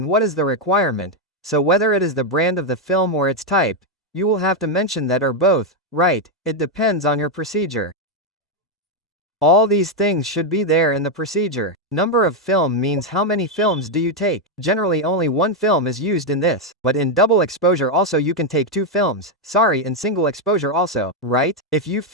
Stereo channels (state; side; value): normal; both; correlation 0.03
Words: what is the requirement? So whether it is the brand of the film or its type, you will have to mention that or both, right? It depends on your procedure. All these things should be there in the procedure. Number of film means how many films do you take. Generally only one film is used in this, but in double exposure also you can take two films. Sorry, in single exposure also, right? If you